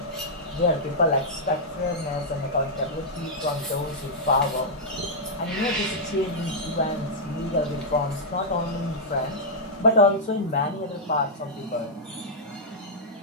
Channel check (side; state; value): both; normal; correlation -0.07